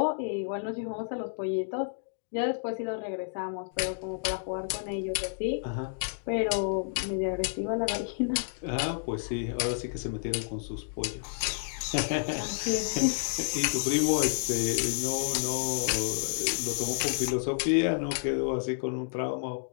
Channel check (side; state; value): right; silent; digital silence